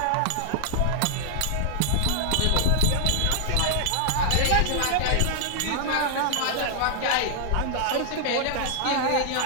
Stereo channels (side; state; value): both; different; correlation -0.01